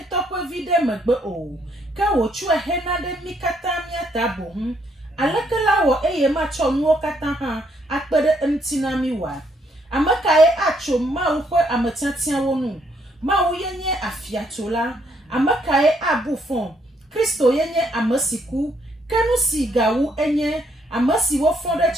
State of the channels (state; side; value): normal; both; correlation 0.71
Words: Amakaye acho mau kwe amatiatia wonu. Mau yenye afiatola. Amakaye abufon. Kristo yenye amasiku. Kenu si gawu enye. Amasi wofonde